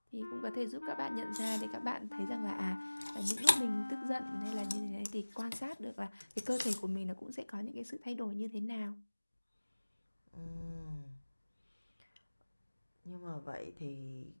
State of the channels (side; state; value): both; inverted; correlation -1.00